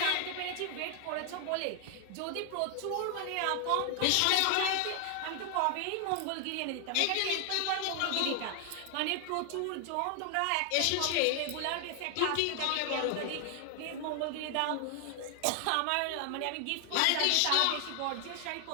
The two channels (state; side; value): different; both; correlation 0.00